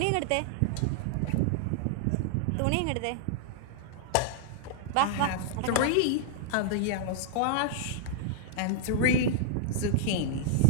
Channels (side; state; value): both; different; correlation -0.01